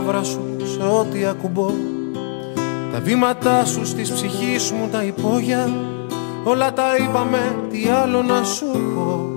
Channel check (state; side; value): silent; right; digital silence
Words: σου σε ό,τι ακουμπώ. Τα βήματά σου στις ψυχής μου τα υπόγεια. Όλα τα είπαμε, τι άλλο να σου πω.